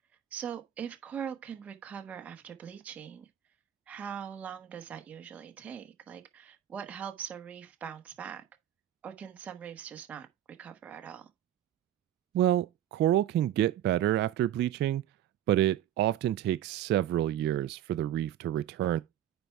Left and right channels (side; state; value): left; quieter; 11.7 dB